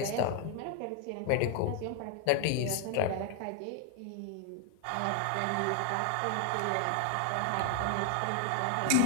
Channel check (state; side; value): different; both; correlation 0.01